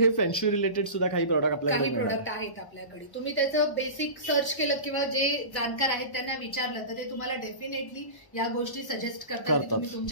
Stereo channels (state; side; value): late; right; 1.0 ms